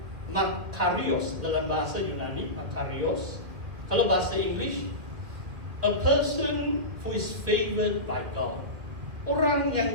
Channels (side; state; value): left; late; 1.8 ms